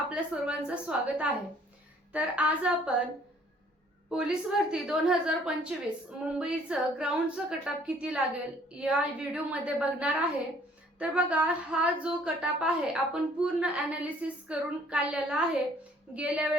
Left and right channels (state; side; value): normal; both; correlation 0.59